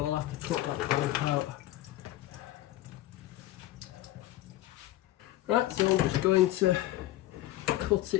I'll have to cut that bolt out. Right, so I'm just going to cut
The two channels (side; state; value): right; quieter; 15.5 dB